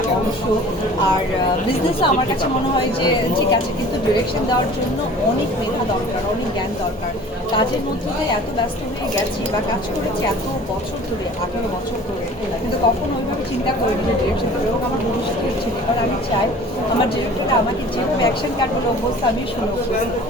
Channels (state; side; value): normal; both; correlation 0.46